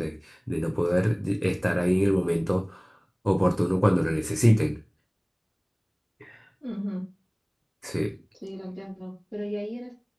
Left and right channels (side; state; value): both; identical; correlation 1.00